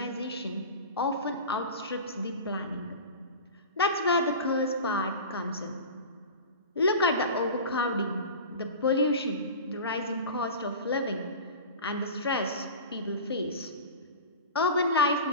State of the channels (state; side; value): inverted; both; correlation -0.32